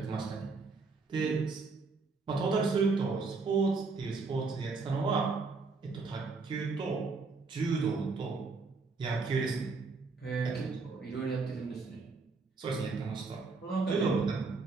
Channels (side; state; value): left; quieter; 4.2 dB